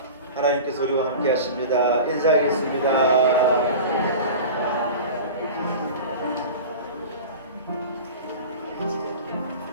하나님께서 우리와 함께 하십니다. 인사하겠습니다.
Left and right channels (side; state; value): both; inverted; correlation -0.34